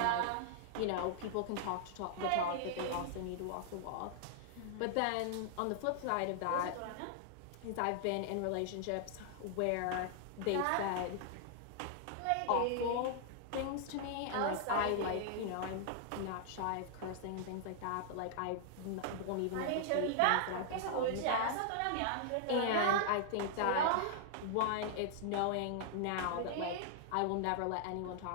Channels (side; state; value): both; different; correlation -0.01